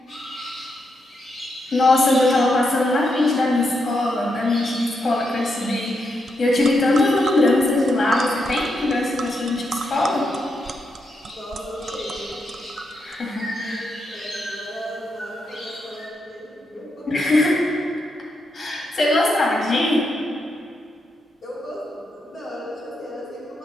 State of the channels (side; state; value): both; normal; correlation 0.82